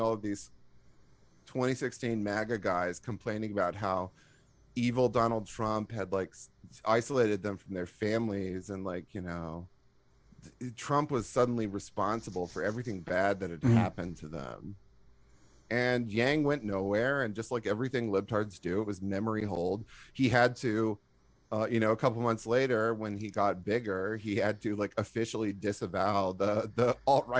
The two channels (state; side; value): identical; both; correlation 1.00